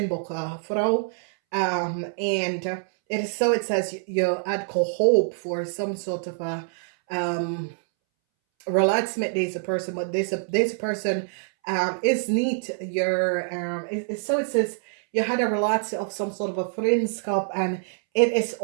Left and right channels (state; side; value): silent; left; 61 dB below the other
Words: vrouw. En het is zoiets als je had hoop voor some sort of a relatie met deze persoon, maar deze persoon is niet is zoiets als je had een relatie of some sort of a vriendschap en het is